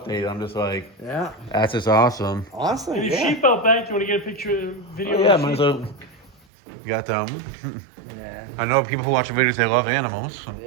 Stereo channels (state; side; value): drops out; left; at 6.4 s